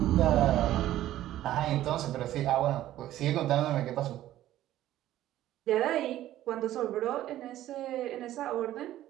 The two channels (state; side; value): quieter; left; 13.6 dB